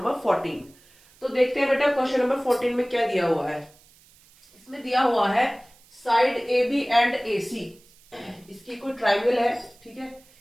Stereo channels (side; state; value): right; noise; hiss, 28 dB below the sound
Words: 14। तो देखते हैं बेटा क्वेश्चन नंबर 14 में क्या दिया हुआ है। इसमें दिया हुआ है side A B and A C. इसकी कोई ट्राइंगल है, ठीक है।